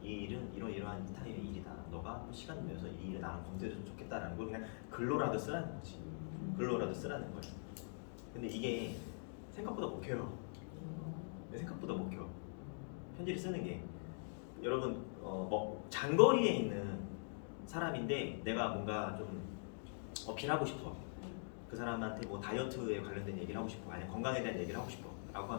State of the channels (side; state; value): right; silent; digital silence